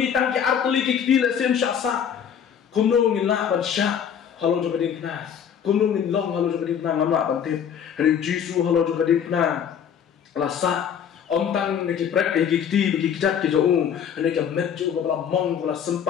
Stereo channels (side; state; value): right; quieter; 8.2 dB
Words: ki artli ki kila sem syasa kumno ngin la ban syak halo juga dikna kumno ngin long halo juga dikna ngamla ban tip hari Jesus halo juga dikna lasa ontang neki prek ki kiti bagi kijat ki jo neki met jo bala mong bala